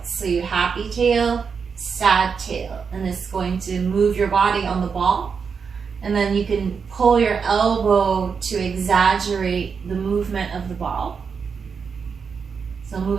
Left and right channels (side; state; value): left; quieter; 5.9 dB